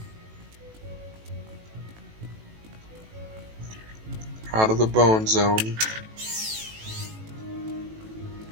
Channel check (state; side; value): late; left; 18 ms